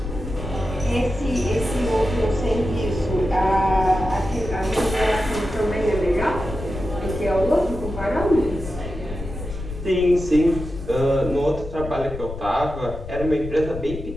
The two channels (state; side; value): noise; left; rumble, 9 dB below the sound